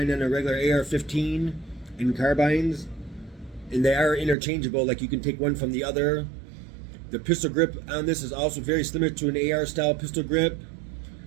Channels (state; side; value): drops out; left; at 4.4 s